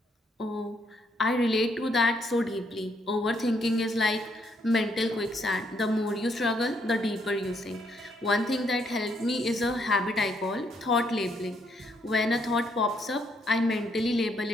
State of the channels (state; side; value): normal; both; correlation 0.73